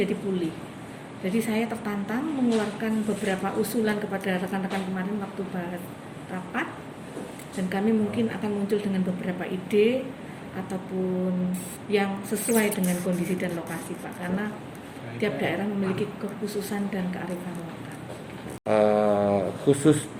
pulih. Jadi saya tertantang mengeluarkan beberapa usulan kepada rekan-rekan kemarin waktu bahas rapat, dan kami mungkin akan muncul dengan beberapa ide ataupun yang sesuai dengan kondisi dan lokasi Pak, karena tiap daerah memiliki kekhususan dan kearifan lokal. Khusus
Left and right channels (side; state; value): both; identical; correlation 1.00